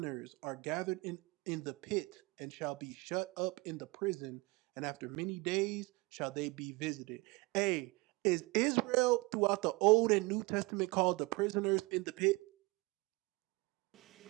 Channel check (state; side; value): quieter; left; 24.7 dB